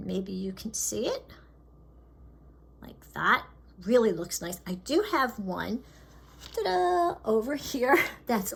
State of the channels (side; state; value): both; identical; correlation 1.00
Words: maybe you can see it like that. Really looks nice. I do have one over here that's